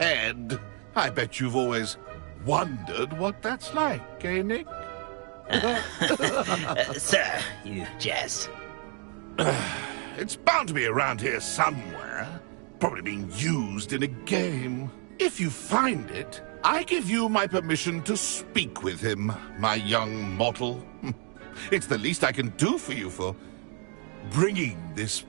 I bet you've always wondered what that's like, eh, Nick? Sir, you jest. It's bound to be around here somewhere. Probably being used in a game. If you find it, I give you my permission to speak with him, my young mortal. It's the least I can do for you for bringing this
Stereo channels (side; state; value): left; quieter; 39.4 dB